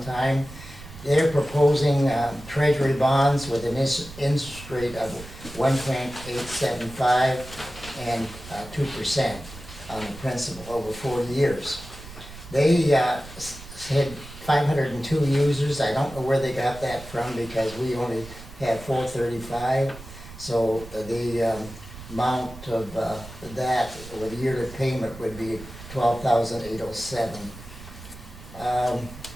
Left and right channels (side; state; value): right; noise; rumble, 16 dB below the sound